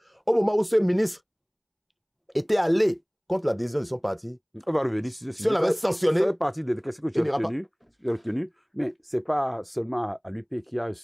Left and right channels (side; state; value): both; identical; correlation 1.00